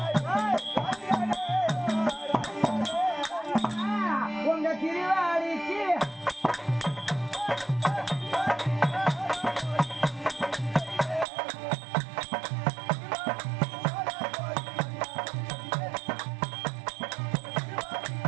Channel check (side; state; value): left; drops out; at 11.2 s